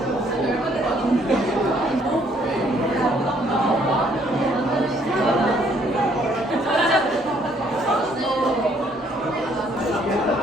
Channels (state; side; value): normal; both; correlation 0.65